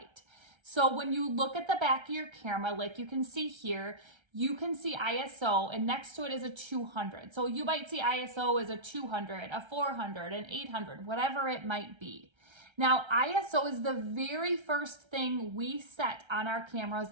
So when you look at the back of your camera, like you can see here, you can see ISO, and next to it is a 200. So you might see ISO as a 200, a 400, an 800, whatever it might be. Now, ISO is the very first thing we set on our cameras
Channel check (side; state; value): left; late; 1.3 ms